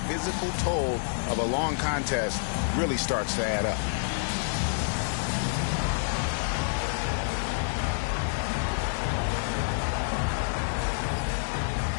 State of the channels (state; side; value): silent; right; digital silence